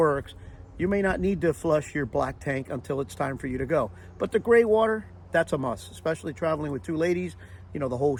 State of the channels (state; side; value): identical; both; correlation 1.00